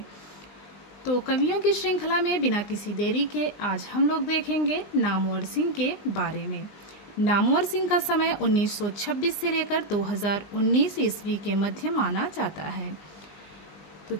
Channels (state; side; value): late; right; 20 ms